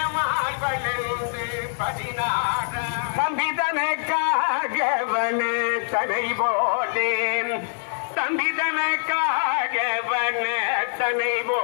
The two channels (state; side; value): silent; right; 63 dB below the other